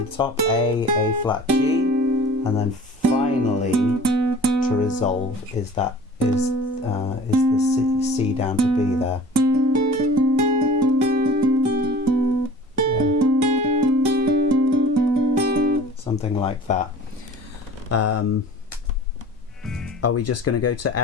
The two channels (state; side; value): normal; both; correlation 0.44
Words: the top, A flat, G, and then finally to resolve is the C down to B there. Yeah. Something like that. Are we just going to go to